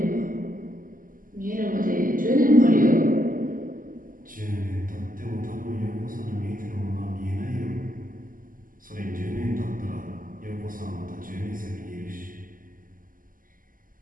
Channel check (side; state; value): left; late; 0.40 ms